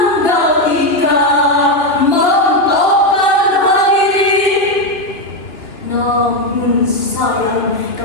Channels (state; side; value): late; right; 2.6 ms